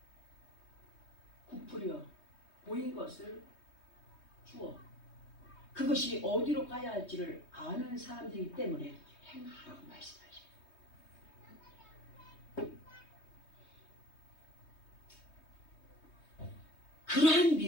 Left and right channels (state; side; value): late; right; 3.2 ms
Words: 부풀려 보인 것을 주어. 그것이 어디로 가야 할지를 아는 사람들이기 때문에 행하라고 말씀하십니다. 그러한